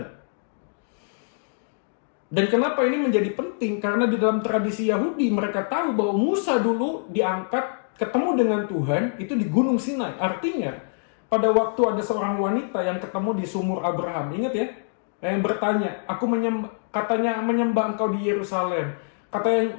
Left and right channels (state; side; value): silent; right; digital silence